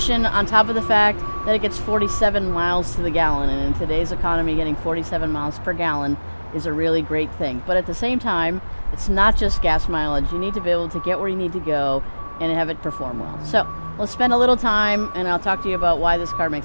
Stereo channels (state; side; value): inverted; both; correlation -1.00